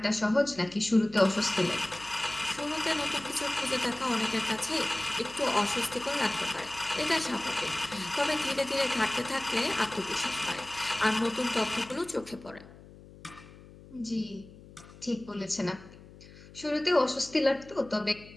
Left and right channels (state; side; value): noise; left; hum, 20 dB below the sound